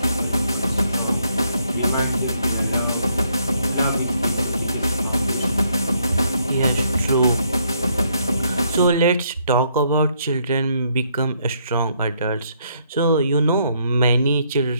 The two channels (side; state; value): both; inverted; correlation -0.72